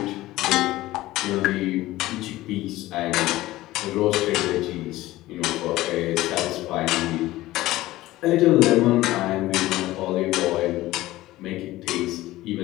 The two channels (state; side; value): quieter; right; 17.0 dB